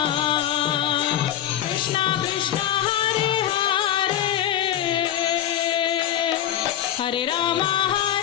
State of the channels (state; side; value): quieter; right; 11.1 dB